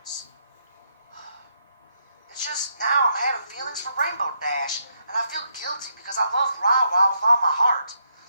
It's just now I'm having feelings for Rainbow Dash, and I feel guilty because I love Ra with all my heart.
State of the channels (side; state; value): both; inverted; correlation -0.77